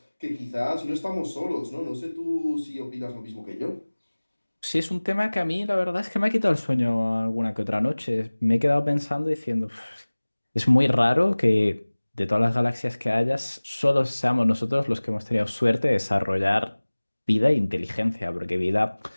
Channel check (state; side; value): inverted; both; correlation -1.00